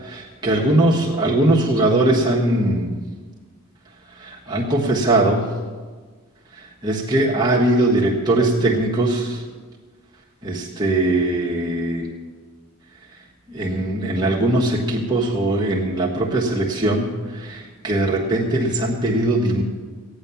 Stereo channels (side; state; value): both; normal; correlation 0.46